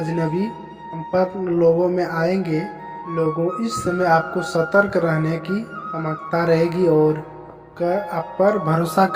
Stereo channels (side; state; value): both; identical; correlation 1.00